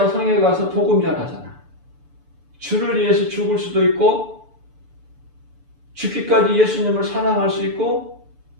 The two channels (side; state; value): left; late; 6.9 ms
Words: 성에 가서 복음 전하잖아. 주를 위해서 죽을 수도 있고 죽기까지 예수님을 사랑할 수 있고